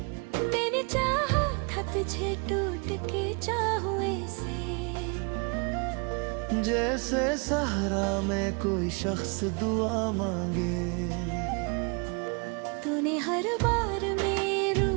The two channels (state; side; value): quieter; left; 33.1 dB